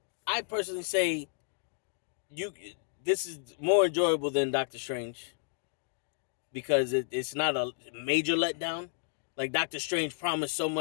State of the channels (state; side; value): silent; right; digital silence